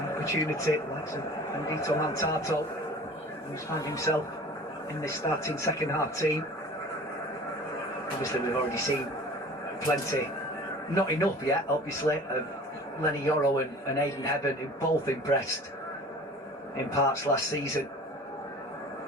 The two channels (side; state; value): both; normal; correlation 0.43